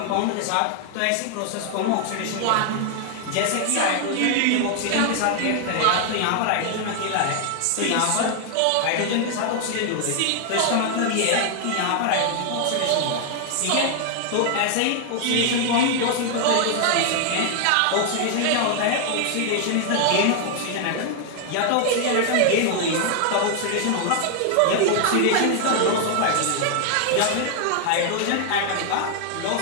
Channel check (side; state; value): both; different; correlation 0.00